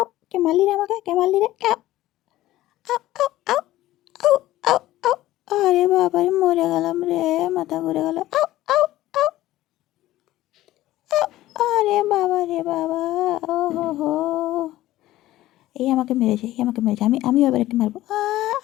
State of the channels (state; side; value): quieter; right; 15.5 dB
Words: কে মারলি রে আমাকে? কে মারলি রে? আউ! আউ! আউ! আউ! আউ! আউ! আউ! আরে বাবারে মরে গেলাম রে! মাথা ঘুরে গেল। আউ! আউ! আউ! আউ! আরে বাবা রে বাবা! ওহোহো! এই আমাকে মেরেছে, এই আমাকে মেরেছে। আমিও এবার একে মারবো।